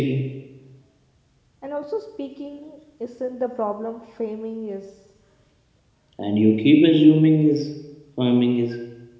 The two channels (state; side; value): identical; both; correlation 1.00